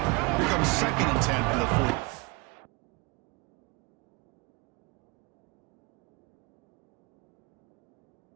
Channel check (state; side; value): quieter; left; 27.5 dB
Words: Here comes 2nd and 10 for the 40.